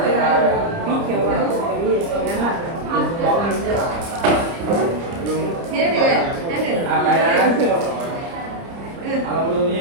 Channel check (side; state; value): left; late; 30 ms